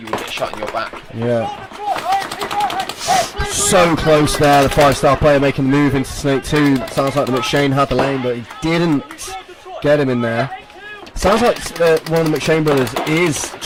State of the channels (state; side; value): identical; both; correlation 1.00